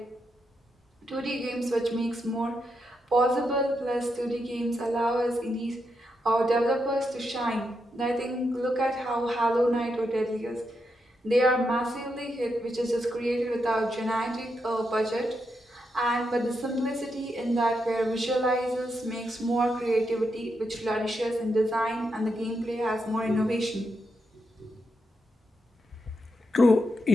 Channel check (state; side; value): normal; both; correlation 0.83